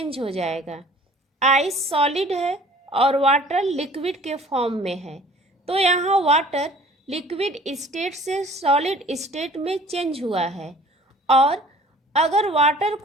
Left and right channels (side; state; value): both; normal; correlation 0.50